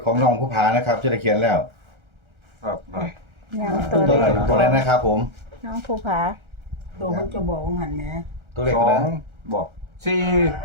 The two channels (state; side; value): late; left; 1.4 ms